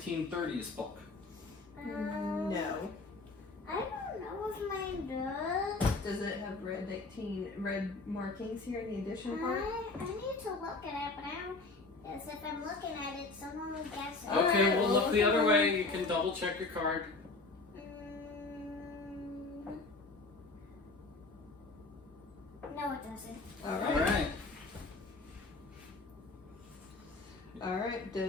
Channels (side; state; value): right; quieter; 3.5 dB